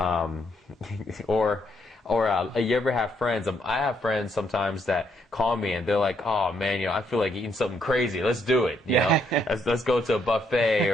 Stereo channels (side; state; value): both; normal; correlation 0.74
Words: Or you ever have friends? I have friends sometimes that call me and they're like, "Oh man, you know, I feel like eating something crazy. Let's do it. You know, let's go to a